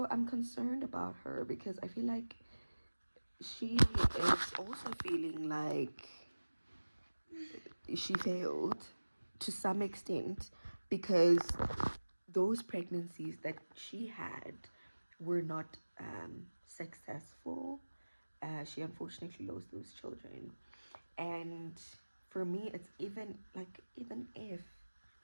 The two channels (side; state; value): both; inverted; correlation -1.00